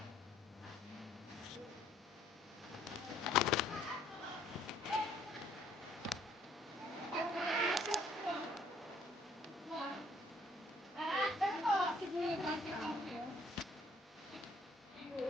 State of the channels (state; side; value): normal; both; correlation 0.63